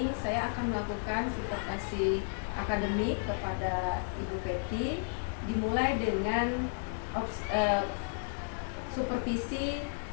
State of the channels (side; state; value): right; silent; digital silence